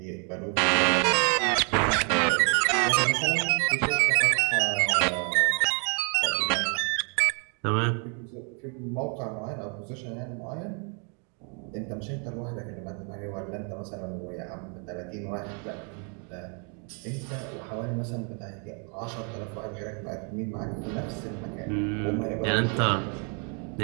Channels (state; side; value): quieter; left; 37.7 dB